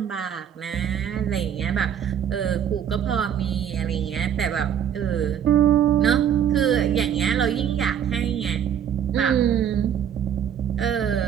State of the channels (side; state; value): left; quieter; 9.0 dB